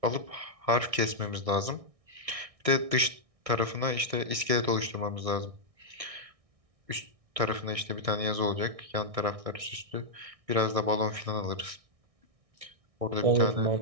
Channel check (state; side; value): late; left; 1.6 ms